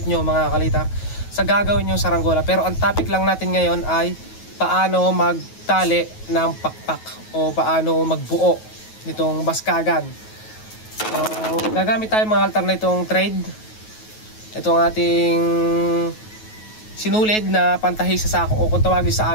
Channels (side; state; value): right; late; 9.3 ms